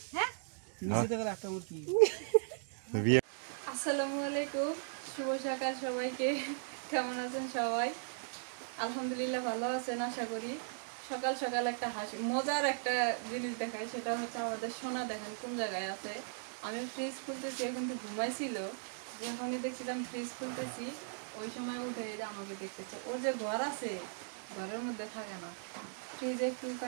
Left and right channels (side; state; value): left; silent; digital silence